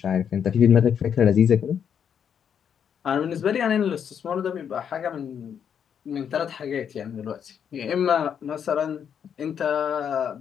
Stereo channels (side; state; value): right; quieter; 8.0 dB